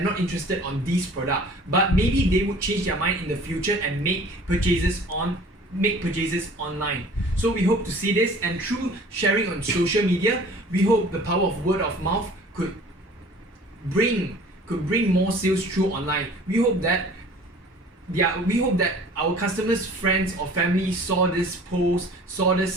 on this product, but maybe they would change their mind in the future and make purchases online. So we hope to see this, and through sharing on social media, we hope the power of word of mouth could bring more sales through online. We hope that our customers, friends or family saw this post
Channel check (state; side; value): normal; both; correlation 0.47